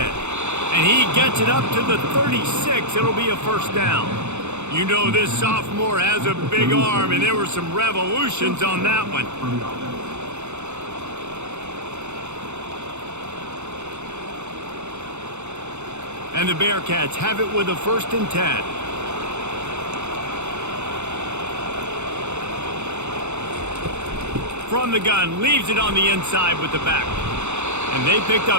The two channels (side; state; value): left; late; 0.82 ms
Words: And he gets it up to the 36. It'll be a first down. You know this sophomore has a big arm, and there were some revolutions on that one. And the Bearcats have it with a 1st and 10. From the gun, leaves it on the inside with the back. And they picked